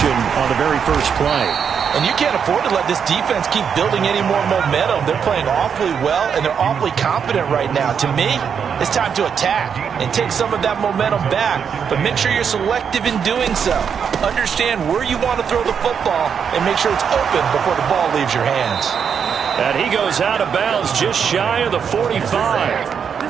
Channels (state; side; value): quieter; left; 7.1 dB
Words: on the very first play. And you can't afford to let this defense keep building any more momentum. They're playing awfully well, and they're awfully confident right now. To me, it's time to attack and take some of that momentum back, but make sure you're selective in doing so. Understand where you want to throw the football and make sure it's open before the ball leaves your hands. And he goes out of bounds just shy of the 45.